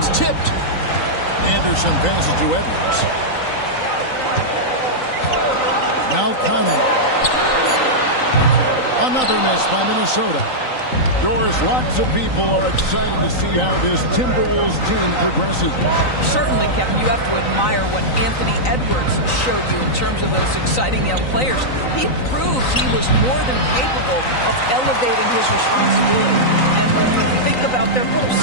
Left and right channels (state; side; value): late; right; 3.9 ms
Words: tipped. Anderson passes to Edwards. Now Conley. Another miss by Minnesota. Doris, lots of people are excited to see how this Timberwolves team progresses. Certainly, Kevin, you have to admire what Anthony Edwards showed you in terms of those exciting young players. He proved he was more than capable of elevating his responsibility. And when you think about their